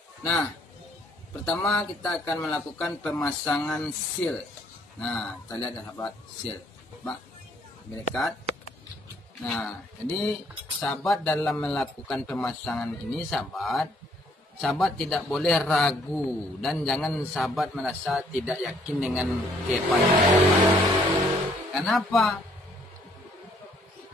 Nah, pertama kita akan melakukan pemasangan seal. Nah, kita lihat ya sahabat, seal. Coba dekat. Nah, jadi sahabat dalam melakukan pemasangan ini sahabat tidak boleh ragu dan jangan sahabat merasa tidak yakin dengan kepandaian sahabat. Kenapa?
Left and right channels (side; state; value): both; normal; correlation 0.65